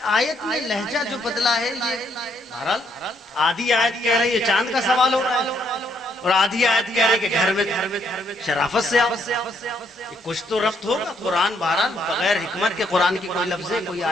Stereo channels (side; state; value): both; normal; correlation 0.72